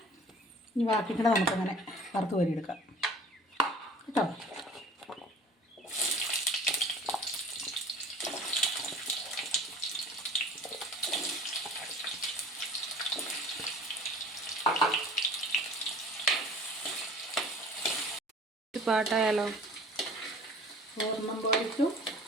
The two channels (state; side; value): normal; both; correlation 0.46